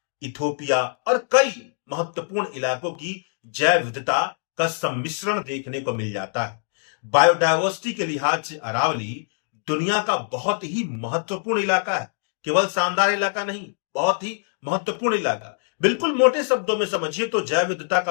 इथोपिया और कई महत्वपूर्ण इलाकों की जैव विविधता का सम्मिश्रण देखने को मिल जाता है। बायोडायवर्सिटी के लिहाज से अरावली दुनिया का बहुत ही महत्वपूर्ण इलाका है। केवल शानदार इलाका नहीं, बहुत ही महत्वपूर्ण इलाका। बिल्कुल मोटे शब्दों में समझिए तो जैव विविधता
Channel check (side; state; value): right; silent; digital silence